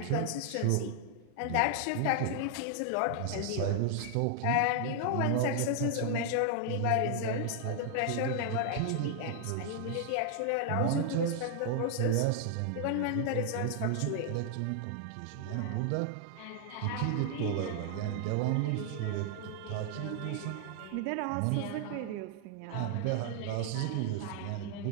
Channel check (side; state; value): both; different; correlation 0.00